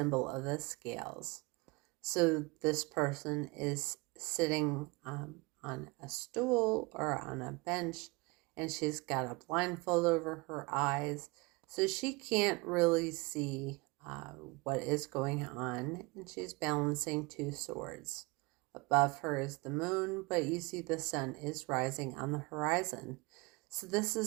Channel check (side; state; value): left; quieter; 26.1 dB